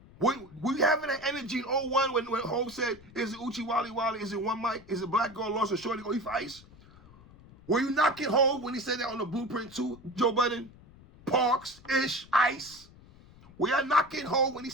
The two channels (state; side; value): noise; left; rumble, 23 dB below the sound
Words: We having that energy in 01 when Hov said, is it Uchi Wally Wally? Is it One Mic? Is it Black Girl Lost or Shorty Go Eat for Ice? Were you knocking Hov when he said that on the Blueprint 2, Joe Budden? Parks, Ish, Ice? Were y'all knocking Hov when he